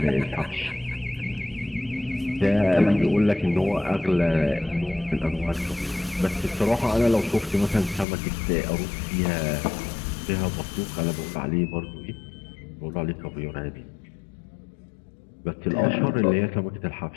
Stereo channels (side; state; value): right; drops out; at 8.1 s